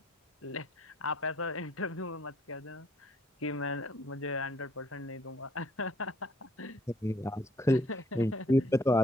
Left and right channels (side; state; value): both; normal; correlation 0.63